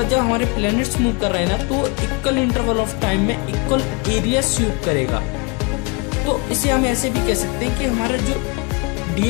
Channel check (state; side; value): quieter; right; 29.3 dB